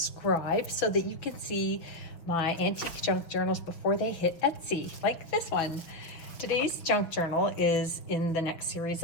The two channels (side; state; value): right; late; 6.2 ms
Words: so that you can see my antique junk journals before they hit Etsy, like this one. Today's junk journal is in the next